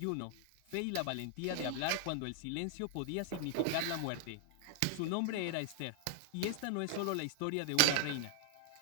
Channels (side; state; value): both; different; correlation 0.00